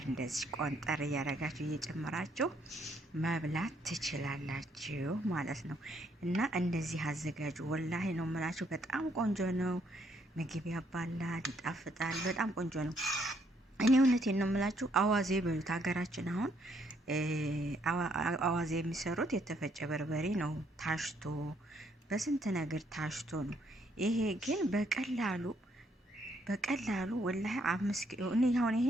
እንደዚህ ቆንጠር እያደረጋችሁ እየጨመራችሁ መብላት ትችላላችሁ ማለት ነው። እና እንደዚህ አዘጋጁ። ወላሂ ነው የምላችሁ፣ በጣም ቆንጆ ነው። ምግብ ያባላል፣ ይጣፍጣል። በጣም ቆንጆ ነው። እኔ እውነቴን ነው የምላችሁ። አዋዜ በሉት ሀገራችን። አሁን አዋዜ የሚሰሩት የተፈጨ በርበሬ ነው፣ ታሽቶ በስንት ነገር ታሽቶ ነው። ይሄ ግን በቀላሉ ወላሂ 5 ኪሎ እኔ አሁን ይሄ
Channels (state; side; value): normal; both; correlation 0.71